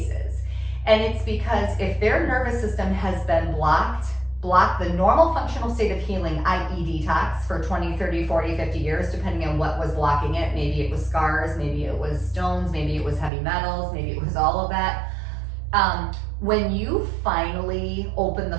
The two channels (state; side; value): drops out; left; at 13.3 s